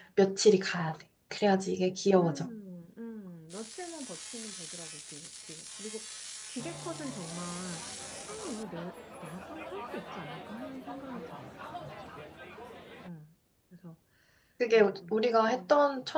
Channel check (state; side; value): identical; both; correlation 1.00